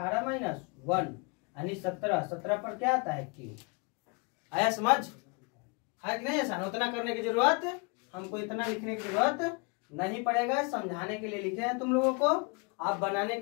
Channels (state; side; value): quieter; right; 32.0 dB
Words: माइनस 1 यानी 17। 17 पर क्या आता है क्यू। आया समझ, है कि नहीं आसान। उतना करने की जरूरत, हमको इतना लिखने की जरूरत नहीं पड़ेगा, समझाने के लिए लिखे हैं तुम लोगों को। आप बनाने